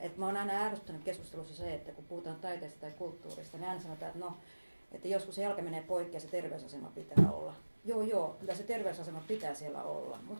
että mä oon aina ärsyttänyt keskustelussa se, että kun puhutaan taiteesta tai kulttuurista, niin aina sanotaan, että joskus se jalka menee poikki ja se terveysasema pitää olla. Joo, kyllä se terveysasema pitää siellä olla,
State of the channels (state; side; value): inverted; both; correlation -1.00